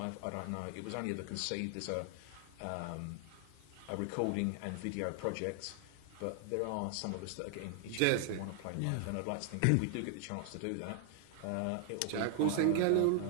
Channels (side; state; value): both; different; correlation 0.00